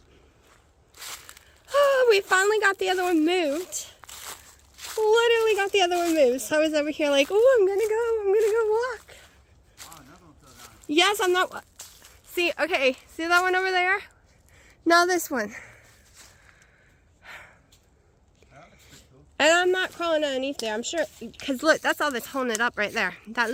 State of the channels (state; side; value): identical; both; correlation 1.00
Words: Oh, we finally got the other one moved. Literally got the other one moved. So I was over here like, oh, I'm gonna go walk. Oh, another one fell down. Yes, I'm not. See, okay, see that one over there? Now this one. And I'm not crawling underneath there, I'm sure, because look, that's all that's holding it up right there. That